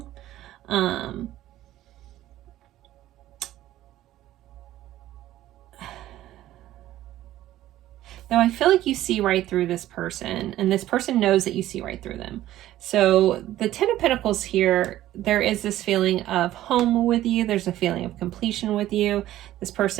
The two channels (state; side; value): quieter; left; 14.1 dB